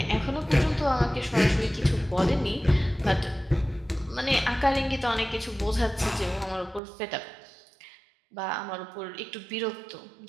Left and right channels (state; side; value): drops out; left; at 6.8 s